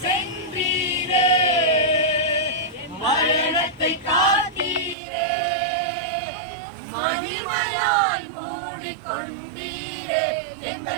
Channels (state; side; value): drops out; left; at 5.0 s